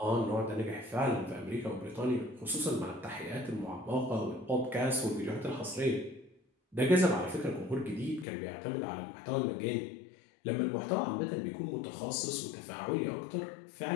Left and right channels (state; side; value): drops out; right; at 8.2 s